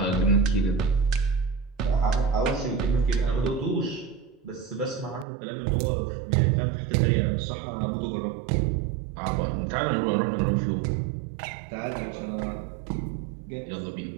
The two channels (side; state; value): left; drops out; at 5.2 s